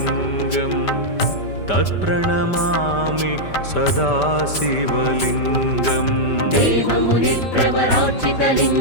तत्प्रणमामि सदा शिवलिङ्गम्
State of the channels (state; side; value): late; right; 5.1 ms